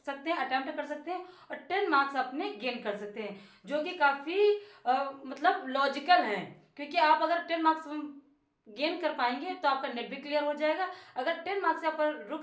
सकते हैं, अटेम्प्ट कर सकते हैं और 10 मार्क्स अपने गेन कर सकते हैं, जो कि काफ़ी मतलब लॉजिकल है। क्योंकि आप अगर 10 मार्क्स गेन कर पाएंगे तो आपका नेट भी क्लियर हो जाएगा। अगर 10 मार्क्स यहाँ पर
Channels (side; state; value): both; identical; correlation 1.00